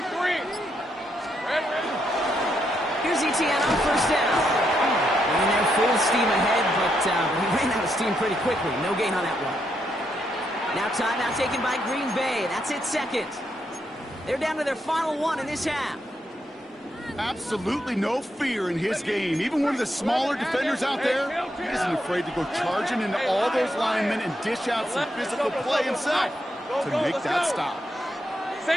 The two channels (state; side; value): normal; both; correlation 0.80